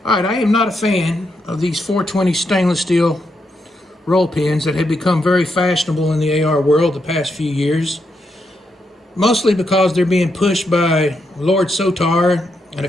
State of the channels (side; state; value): both; normal; correlation 0.81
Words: Alright, I am not a fan of these 420 stainless steel roll pins that have become very fashionable in the AR world the past few years. Mostly because they're being pushed by Lord Sotar and a